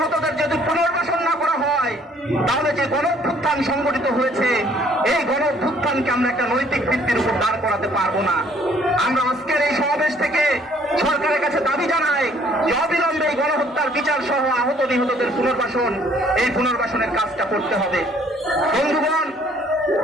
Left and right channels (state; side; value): normal; both; correlation 0.60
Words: যদি পুনর্বাসন না করা হয়, তাহলে যে গণঅভ্যুত্থান সংগঠিত হয়েছে, এই গণঅভ্যুত্থানকে আমরা একটা নৈতিক ভিত্তির উপর দাঁড় করাতে পারবো না। আমরা আজকের এই সমাবেশ থেকে সরকারের কাছে দাবি জানাই যে অবিলম্বে এই গণহত্যার বিচার সহ আহত নিহতদের পুনর্বাসন, এই পুনর্বাসনের কাজটা করতে হবে। বন্ধুগণ,